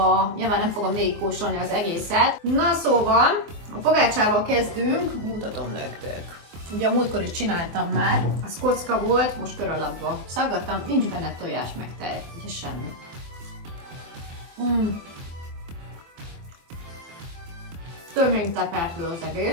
nyilván nem fogom végigkóstolni az egészet. Na szóval, a pogácsával kezdünk, mutatom nektek. Ugye a múltkor is csináltam már, az kocka volt, most kör alakba szaggattam, nincs benne tojás meg tej, ugye semmi. Több mint tepertő az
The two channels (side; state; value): left; late; 24 ms